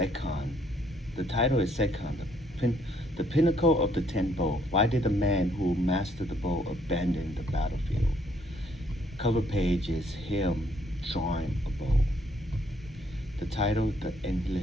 The title is Sekon, the pinnacle of the ten bow. Why did the man who mastered the bow abandon the battlefield? Cover page is him drawing a bow. The title, The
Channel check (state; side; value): normal; both; correlation 0.67